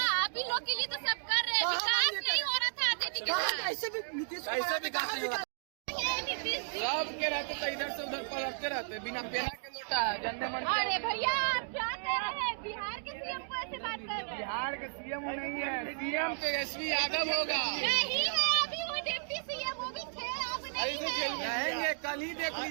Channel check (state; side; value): silent; left; digital silence